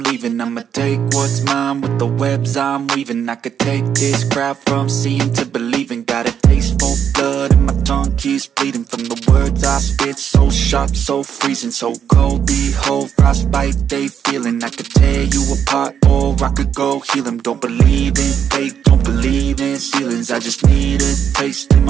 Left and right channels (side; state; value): left; quieter; 8.3 dB